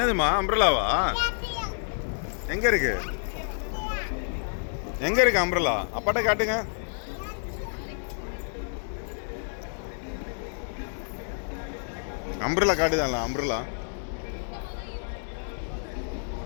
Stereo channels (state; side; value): silent; right; digital silence